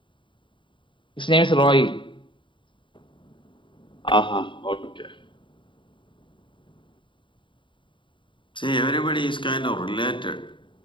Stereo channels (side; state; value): right; late; 0.24 ms